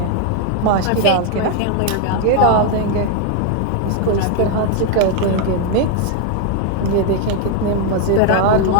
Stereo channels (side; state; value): both; different; correlation 0.01